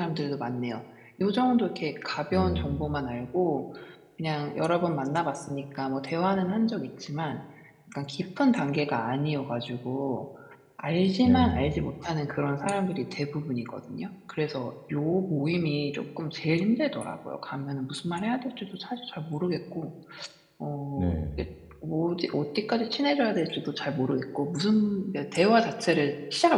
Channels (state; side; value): identical; both; correlation 1.00